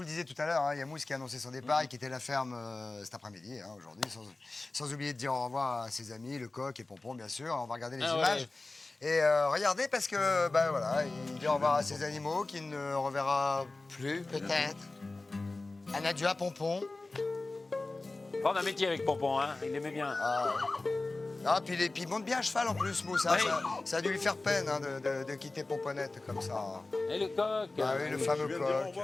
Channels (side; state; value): right; quieter; 3.2 dB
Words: le disais tout à l'heure, il y a Mousse qui a annoncé son départ et qui était la ferme cet après-midi, aujourd'hui, sans oublier de dire au revoir à ses amis, le coq et Pompon, bien sûr. On va regarder les images. Et regardez, parce que, ben voilà, il dit au revoir à ses animaux qu'il ne reverra plus, peut-être. Un adieu à Pompon. Prends un métier avec Pompon, hein. Il aimait bien. Ah, puis il monte bien à cheval en plus, Mousse. Hein. Ça a dû lui faire peine hein, de quitter Pomponette comme ça. Et le coq. Ah oui, le fameux Je viens de dire au coq.